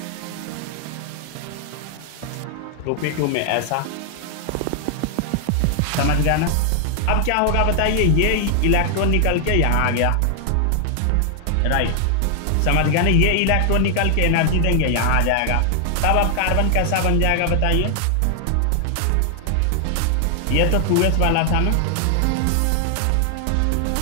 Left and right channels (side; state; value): both; different; correlation 0.00